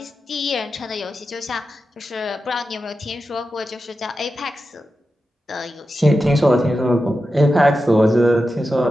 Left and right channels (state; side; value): normal; both; correlation 0.91